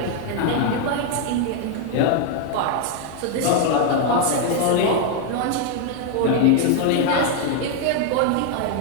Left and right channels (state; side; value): different; both; correlation 0.01